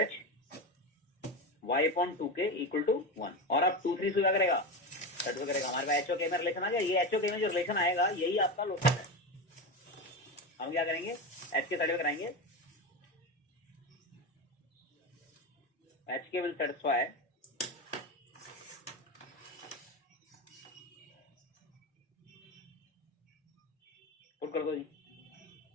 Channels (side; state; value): both; normal; correlation 0.18